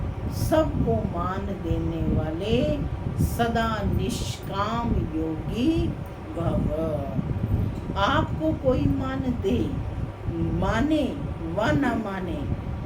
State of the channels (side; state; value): both; identical; correlation 1.00